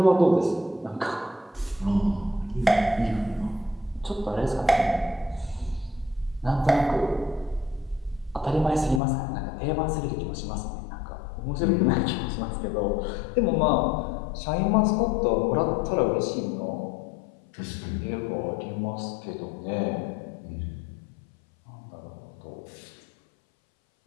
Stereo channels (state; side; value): drops out; right; at 9.0 s